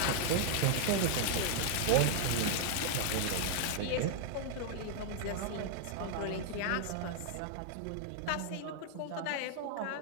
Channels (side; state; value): both; different; correlation 0.00